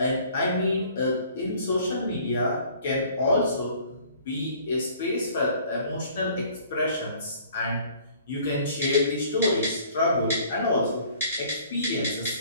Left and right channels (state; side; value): inverted; both; correlation -0.54